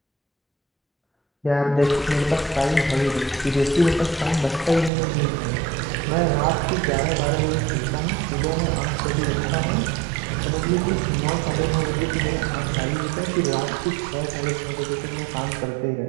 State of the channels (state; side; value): drops out; left; at 4.9 s